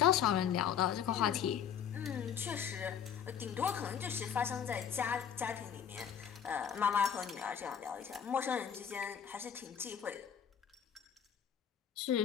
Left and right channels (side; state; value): right; quieter; 8.4 dB